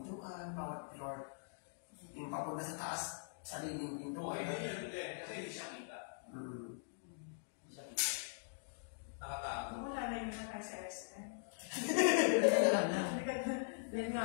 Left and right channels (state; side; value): silent; right; digital silence